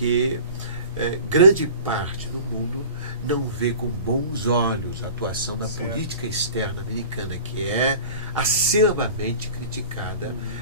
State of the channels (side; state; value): both; inverted; correlation -0.40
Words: grande parte do mundo não vê com bons olhos a atuação da Certo. política externa americana, que é acervamente criticada